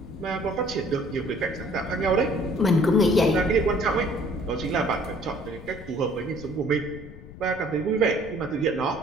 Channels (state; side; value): noise; left; rumble, 16 dB below the sound